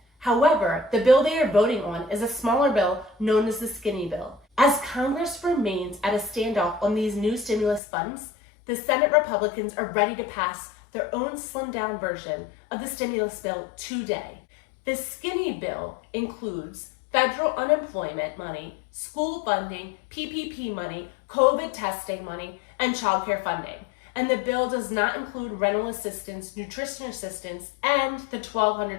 However, the bill they are voting on is a smaller bill known as the skinny bill. As Congress remains at a standoff on these new stimulus funds, the Senate Republicans are ready to pass their own slimmed-down version of the stimulus bill today. The skinny bill includes federal unemployment money, school funding, PPP money, COVID testing money, and child care funding. And the bill does not include rental assistance, nutrition assistance, and the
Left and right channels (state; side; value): drops out; right; at 7.8 s